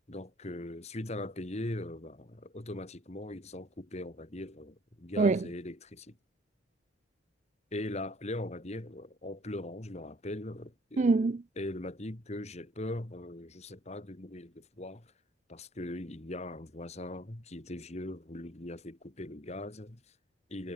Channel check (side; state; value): both; normal; correlation 0.59